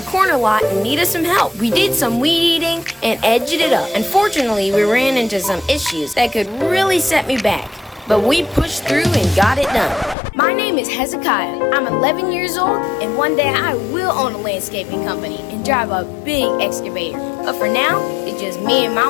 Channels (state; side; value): drops out; right; at 10.2 s